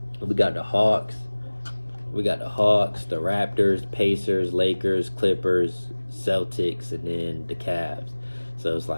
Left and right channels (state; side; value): inverted; both; correlation -1.00